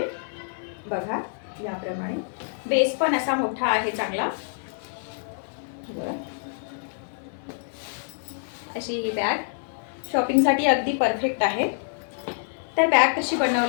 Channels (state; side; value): silent; right; 61 dB below the other